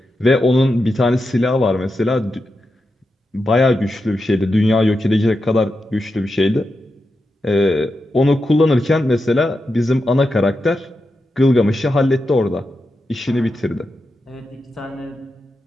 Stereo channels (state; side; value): normal; both; correlation 0.88